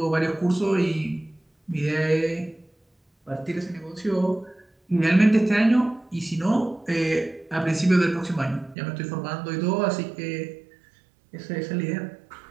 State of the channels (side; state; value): left; drops out; at 8.8 s